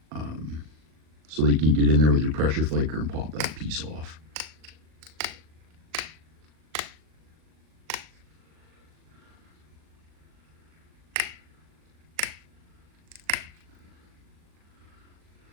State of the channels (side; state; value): left; late; 39 ms